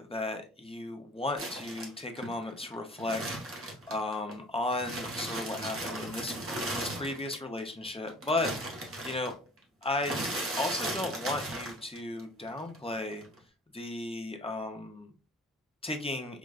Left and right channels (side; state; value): both; normal; correlation 0.47